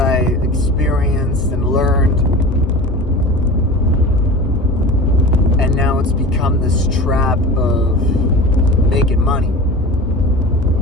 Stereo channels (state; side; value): normal; both; correlation 0.34